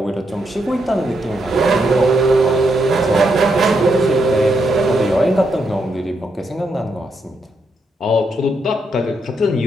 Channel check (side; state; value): both; normal; correlation 0.80